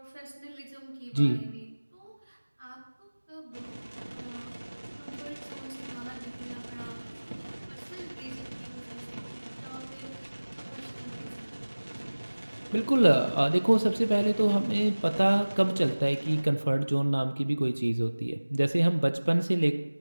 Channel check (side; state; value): both; inverted; correlation -1.00